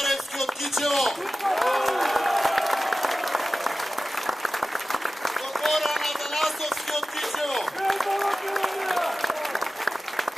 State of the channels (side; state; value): both; normal; correlation 0.95